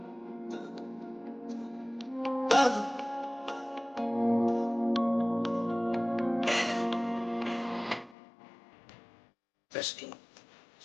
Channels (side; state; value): right; drops out; at 8.2 s